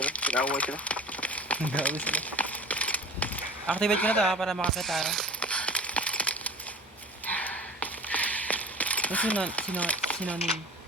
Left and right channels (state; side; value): normal; both; correlation 0.39